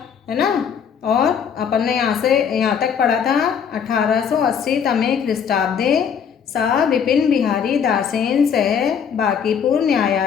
है ना। और अपन ने यहाँ तक पढ़ा था 1880 तमे ख्रीष्टाब्दे सा विपिन बिहारी दासेन सह बांकीपुर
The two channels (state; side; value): quieter; right; 7.4 dB